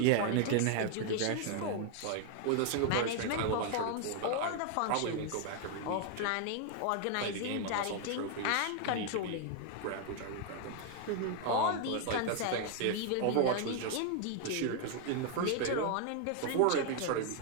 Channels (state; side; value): different; both; correlation 0.00